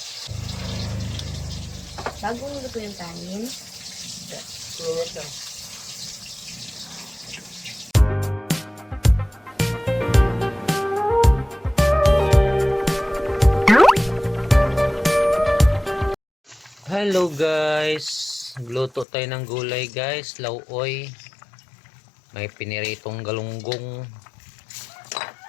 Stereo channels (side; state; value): right; drops out; at 19.1 s